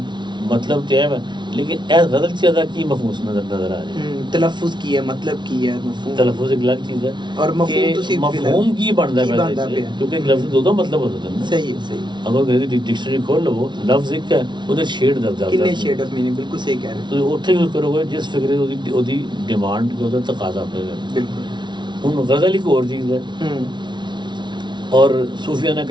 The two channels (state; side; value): late; left; 0.22 ms